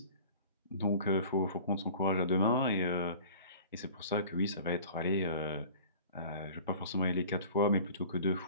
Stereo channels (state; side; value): inverted; both; correlation -0.44